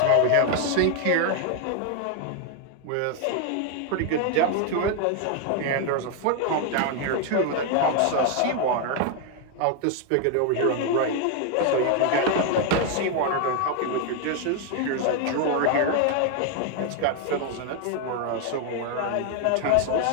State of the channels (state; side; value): different; both; correlation 0.00